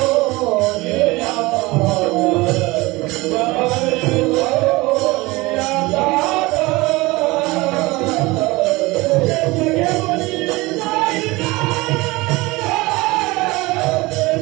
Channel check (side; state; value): left; quieter; 22.0 dB